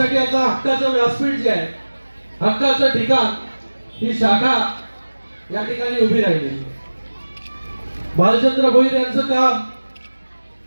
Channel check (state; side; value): inverted; both; correlation -1.00